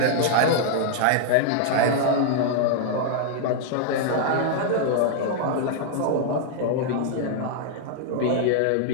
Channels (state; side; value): different; both; correlation -0.01